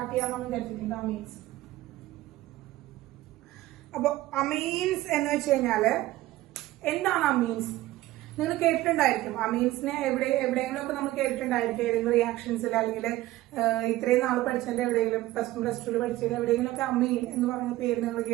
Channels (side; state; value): left; quieter; 16.5 dB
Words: ചെയ്യാമെന്ന് വിചാരിച്ചിട്ടുണ്ട്. അമീൻസ്. അപ്പൊ അമീൻസ് എന്ന് വെച്ച് കഴിഞ്ഞാല് എന്താണ് അമീൻസ്? നിങ്ങൾ കേട്ടിട്ടുണ്ടായിരിക്കും അമീൻസിനെ. എവിടെയെങ്കിലും ഒക്കെ നമ്മൾ കേട്ടിട്ടുണ്ടായിരിക്കും, ഏതെങ്കിലും റിയാക്ഷൻസിൽ അല്ലെങ്കിൽ ഇത്രയും നാൾ പഠിച്ചതിന്റെ എവിടെയെങ്കിലും +1 +2 പഠിച്ചതിൽ എവിടെയെങ്കിലും ഒക്കെ അമീൻ എന്ന് പറയുന്ന പേര് നിങ്ങൾ